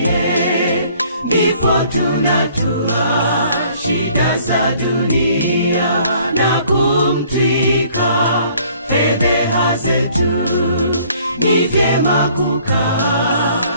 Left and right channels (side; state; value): both; inverted; correlation -0.58